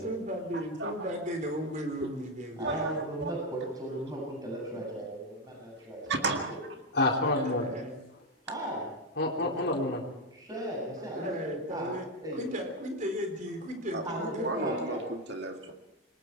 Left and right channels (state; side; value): normal; both; correlation 0.07